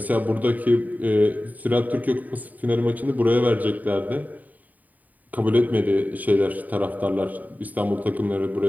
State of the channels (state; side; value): late; left; 0.079 ms